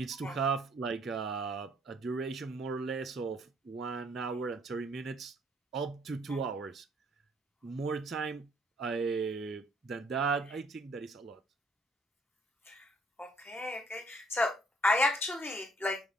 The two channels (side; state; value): both; normal; correlation 0.63